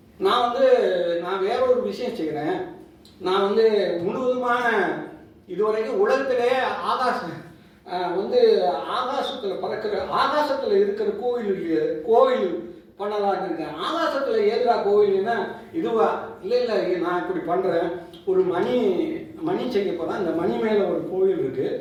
நான் வேற ஒரு விஷயம் செய்கிறேன். நான் வந்து முழுவதுமான இதுவரைக்கும் உலகத்திலே ஆகாசத்தில் பறக்கிற, ஆகாசத்தில் இருக்கிற கோவில் பண்ணலான்னு இருக்கேன். ஆகாசத்தில் ஏதுரா கோவில்னா இதுவா? இல்லை நான் இப்படி பண்ணுறேன். ஒரு மணி செய்ய போகிறேன். அந்த மணி மேலே ஒரு கோவில் இருக்குது.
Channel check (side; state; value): both; identical; correlation 1.00